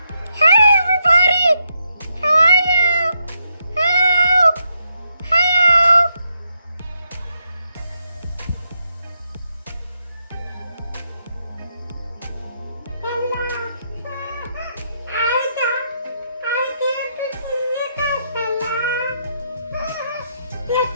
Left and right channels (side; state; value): both; inverted; correlation -0.80